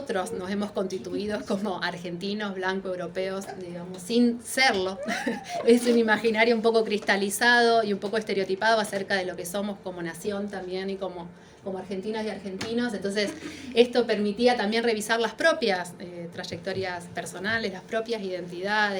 nos hemos constituido como argentinos, blancos, europeos, digamos, sin serlo. Es un imaginario un poco cristalizado y un poco estereotipado acerca de lo que somos como nación también y como argentinas y argentinos. Entonces, esto permitía también revisar las propias trayectorias personales, las propias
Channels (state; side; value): identical; both; correlation 1.00